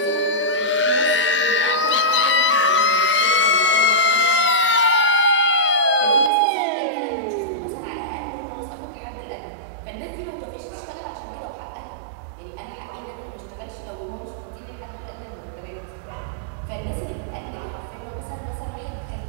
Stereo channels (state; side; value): drops out; left; at 6.3 s